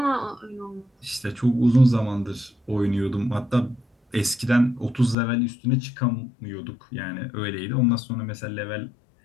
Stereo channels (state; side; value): drops out; right; at 5.2 s